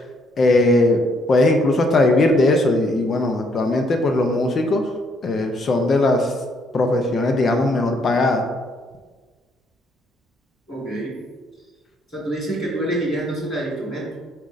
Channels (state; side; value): normal; both; correlation 0.70